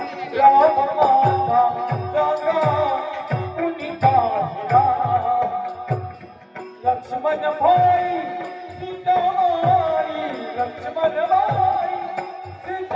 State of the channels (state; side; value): identical; both; correlation 1.00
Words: राम माता जागा कुणी पाहिला लक्ष्मण भाई सीतामाई लक्ष्मण भाई